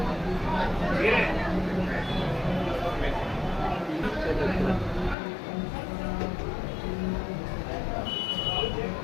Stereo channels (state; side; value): drops out; right; at 5.2 s